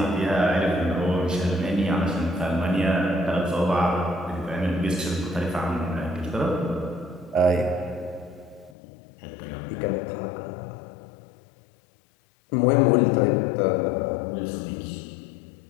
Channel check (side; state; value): right; drops out; at 8.8 s